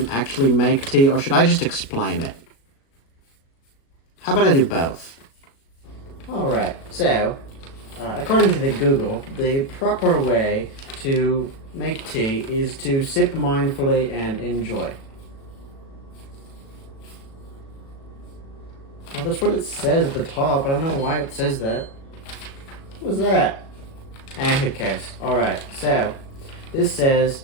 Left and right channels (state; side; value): late; right; 36 ms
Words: actually make tea, or should I just explain it? How about I do both? Alright, so, according to the Google, the proper way to make tea is to sip mindfully and enjoy. Well, that's what it says at the top. I don't know why it says that. What was that? Who cares? Alright, so, this says,